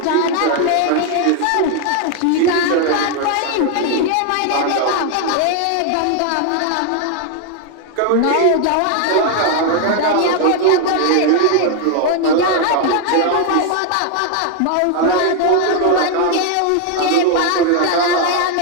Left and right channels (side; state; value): both; different; correlation 0.00